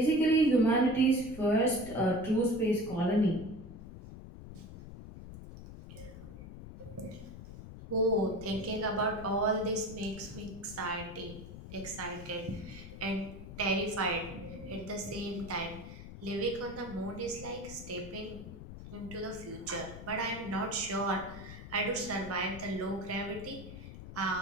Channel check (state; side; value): noise; left; rumble, 12 dB below the sound